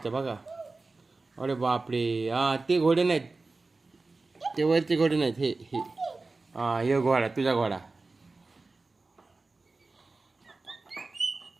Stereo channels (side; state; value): left; quieter; 3.6 dB